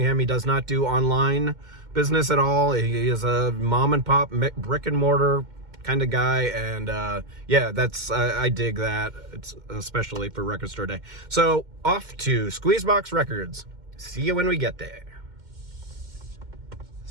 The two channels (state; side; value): late; left; 2.1 ms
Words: He does not do online business at all. He is a mom and pop brick and mortar kind of guy, and yeah, I dig that. It's especially for Record Store Day. So off to Squeezebox Records. See you when we get there.